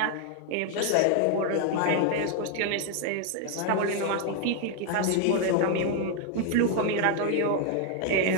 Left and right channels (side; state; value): both; different; correlation 0.00